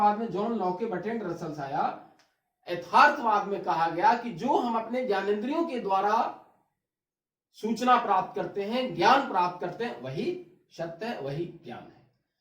में जॉन लॉके, बर्ट्रैंड रसल्स आया। यथार्थवाद में कहा गया कि जो हम अपने ज्ञानेंद्रियों के द्वारा सूचना प्राप्त करते हैं, ज्ञान प्राप्त करते हैं, वही सत्य है, वही ज्ञान है।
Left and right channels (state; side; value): identical; both; correlation 1.00